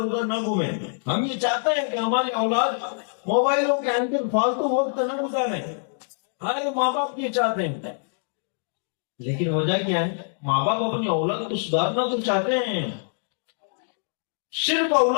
نہ گھومیں. ہم یہ چاہتے ہیں کہ ہماری اولاد موبائلوں کے اندر فالتو وقت نہ گزاریں. ہر ماں باپ یہ چاہتے ہیں، لیکن وجہ کیا ہے؟ ماں باپ اپنی اولاد کو سدھارنا تو چاہتے ہیں، صرف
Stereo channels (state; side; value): silent; right; digital silence